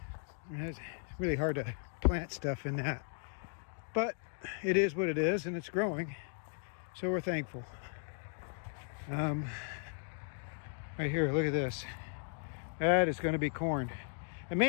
And it's really hard to plant stuff in that, but it is what it is, and it's growing, so we're thankful. Right here, look at this. That is going to be corn, and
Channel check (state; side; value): silent; right; 53 dB below the other